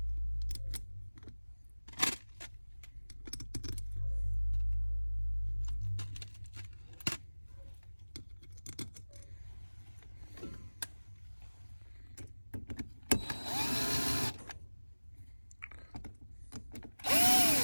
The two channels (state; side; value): inverted; both; correlation -1.00